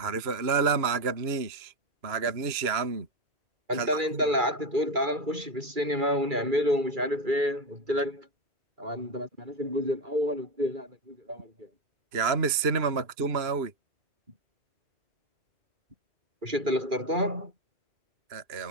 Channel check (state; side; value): late; left; 2.9 ms